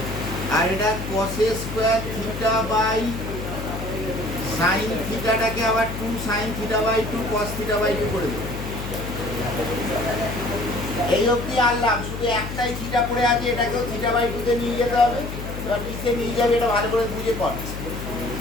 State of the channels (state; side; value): noise; left; hum, 7 dB below the sound